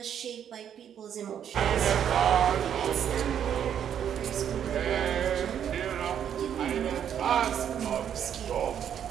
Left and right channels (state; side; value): quieter; left; 9.1 dB